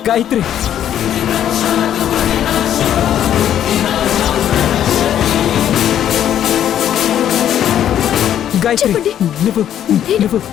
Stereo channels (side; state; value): right; quieter; 10.4 dB